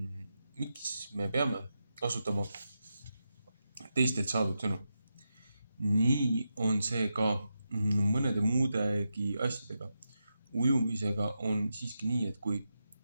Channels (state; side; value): inverted; both; correlation -0.87